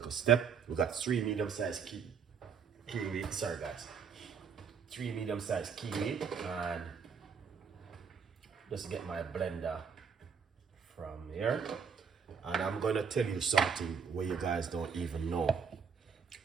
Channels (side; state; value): left; quieter; 6.4 dB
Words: step. We got 3 medium-sized kiwi, sorry guys. 3 medium-sized kiwi, and just get my blender from here. And I'm gonna tell you something where you guys don't even know